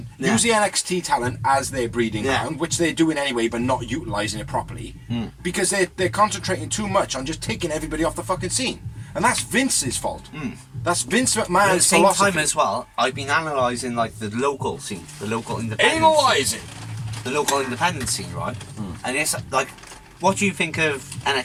Yeah. Use the NXT talent as their breeding Yeah. ground, which they're doing anyway, but not utilising it properly. Because they're concentrating too much on just taking everybody off the fucking scene. And that's Vince's fault. That's Vince At the McMahon's same philosophy. time as well, I've been analysing, like, the local scene, the local independent scene. Analysing. The local independent scene, right? And it's like, what do you think of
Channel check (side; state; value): both; identical; correlation 1.00